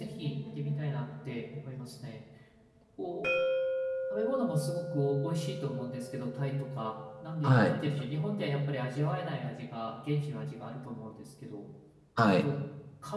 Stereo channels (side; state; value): both; identical; correlation 1.00